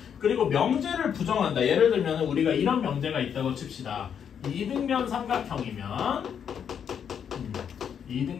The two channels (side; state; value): right; quieter; 8.0 dB